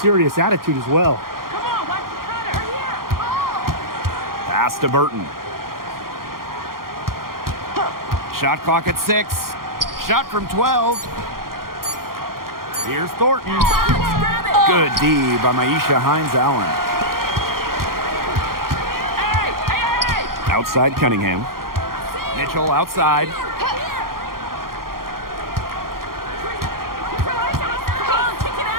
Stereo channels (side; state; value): left; late; 0.92 ms